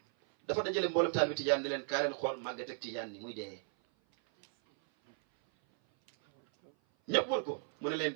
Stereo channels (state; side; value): silent; left; 54 dB below the other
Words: dafa dajale mboolem taalibi tijaan ne leen kaa leen xool màgget ak tijaan ni muy dee ñëpp wër ko mu ne leen